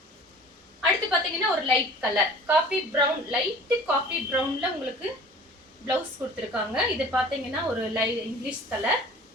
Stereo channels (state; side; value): normal; both; correlation 0.45